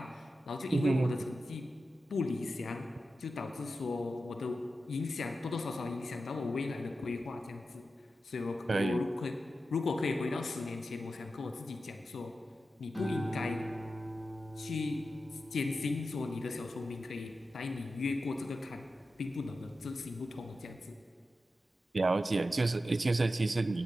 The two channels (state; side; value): normal; both; correlation 0.91